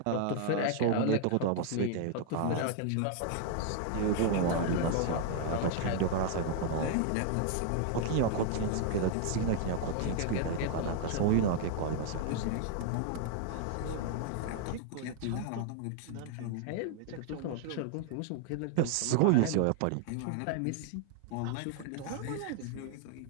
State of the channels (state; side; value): different; both; correlation 0.00